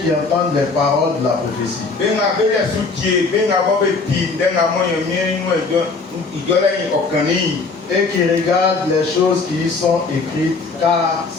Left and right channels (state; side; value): quieter; right; 4.1 dB